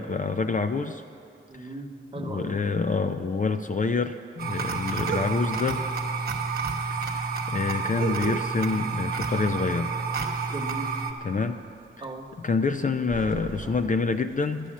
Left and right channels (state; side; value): normal; both; correlation 0.49